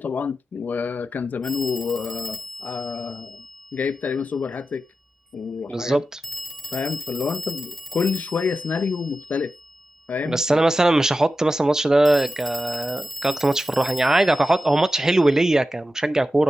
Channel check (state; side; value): normal; both; correlation 0.91